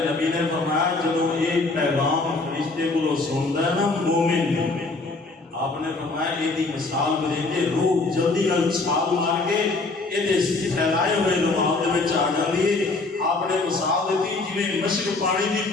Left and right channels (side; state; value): right; quieter; 3.5 dB